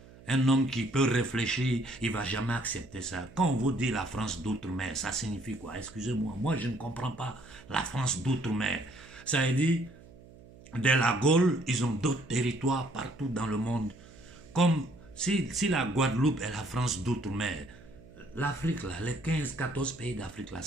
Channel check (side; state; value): right; noise; hum, 21 dB below the sound